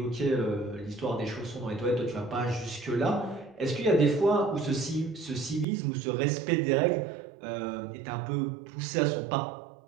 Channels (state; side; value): drops out; left; at 5.7 s